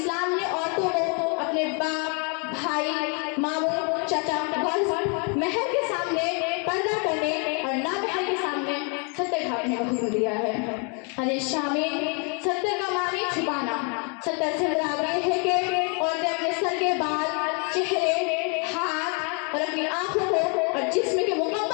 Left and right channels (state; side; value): quieter; right; 36.6 dB